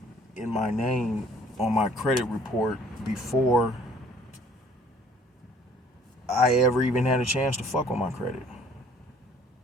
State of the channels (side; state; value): both; normal; correlation 0.56